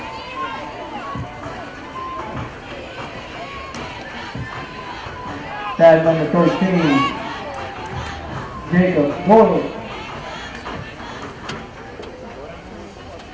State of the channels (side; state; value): both; identical; correlation 1.00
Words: Tag number 13, Jacob Boyle.